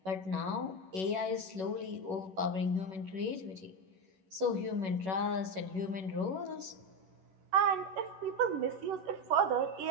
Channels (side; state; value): left; late; 11 ms